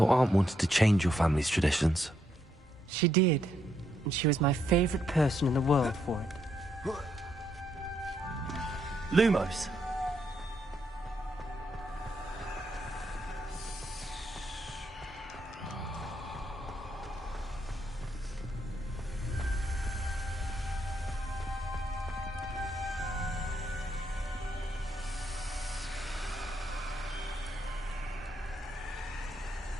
aunt wanted to change your family's traditions. She did, and she was my favorite person in the world for it. Lumos.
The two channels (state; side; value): normal; both; correlation 0.77